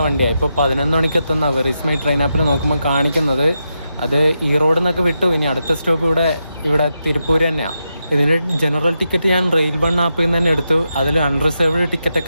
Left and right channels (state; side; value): inverted; both; correlation -0.86